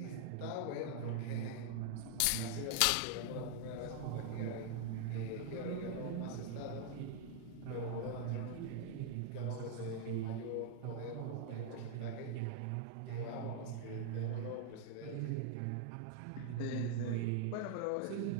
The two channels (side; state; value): both; different; correlation 0.00